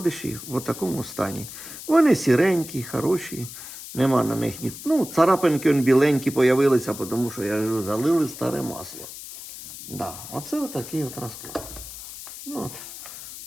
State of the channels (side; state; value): left; noise; hiss, 12 dB below the sound